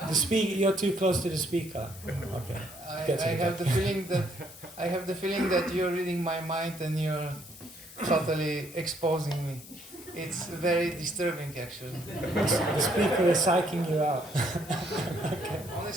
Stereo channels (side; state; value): left; noise; hiss, 18 dB below the sound